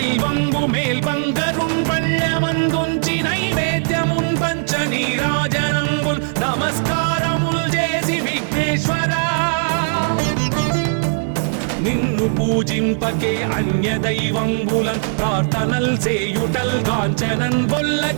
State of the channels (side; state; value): left; silent; digital silence